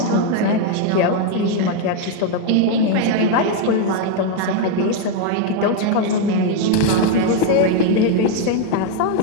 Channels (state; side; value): different; both; correlation 0.01